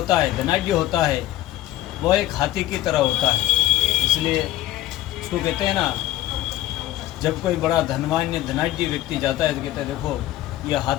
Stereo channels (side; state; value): right; quieter; 14.6 dB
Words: है, धनाढ्य होता है, वह एक हाथी की तरह होता है। इसलिए उसको कहते हैं ना, जब कोई बड़ा धनवान्य धनाढ्य व्यक्ति जाता है तो कहते हैं देखो यह